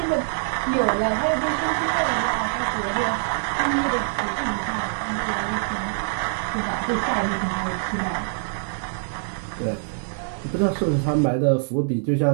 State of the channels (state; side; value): silent; left; digital silence